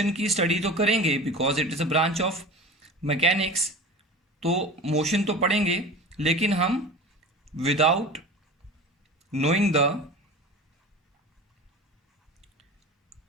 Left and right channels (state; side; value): normal; both; correlation 0.34